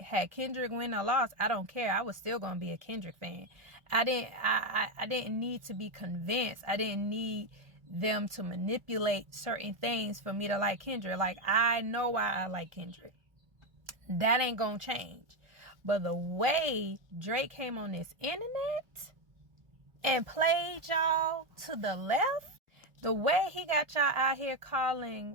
had Kendrick win or lost, I don't care. I was still gonna be a Kendrick fan. I didn't need to be convinced. I didn't need them to manipulate certain things for me to like Kendrick. Like, I know why I like Kendrick. That ain't gonna change. But the way Drake came on this internet and played y'all to the left, the way he got y'all out here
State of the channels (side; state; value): left; late; 1.3 ms